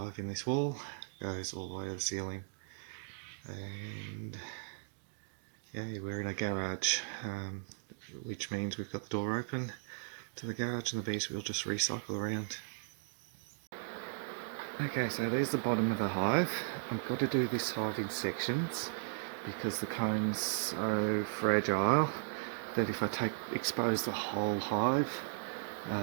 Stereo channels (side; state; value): left; silent; digital silence